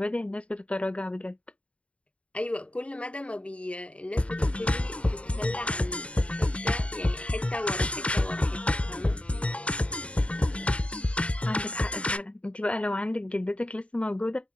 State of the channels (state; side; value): late; right; 0.062 ms